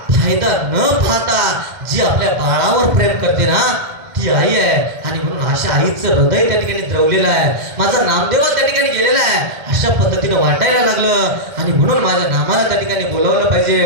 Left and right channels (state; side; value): late; left; 2.1 ms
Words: फायदा न पाहता जी आपल्या बाळावर प्रेम करते ना ती आई आहे. आणि म्हणून अशा आईचं हृदय त्या ठिकाणी द्रवलेलं आहे. माझा नामदेव त्या ठिकाणी गेलेला आहे अशा पद्धतीने वाटायला लागलं आणि म्हणून माझ्या नामाला त्या ठिकाणी बोलावलं